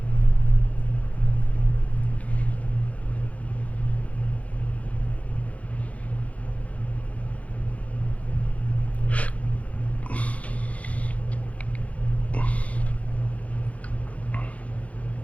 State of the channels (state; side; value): late; right; 0.066 ms